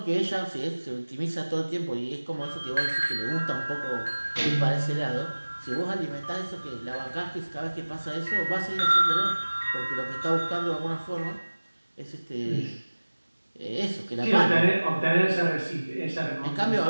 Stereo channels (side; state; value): both; inverted; correlation -1.00